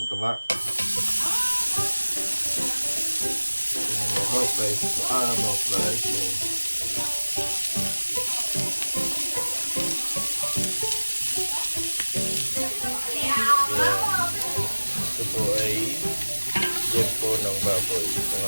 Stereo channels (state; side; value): inverted; both; correlation -1.00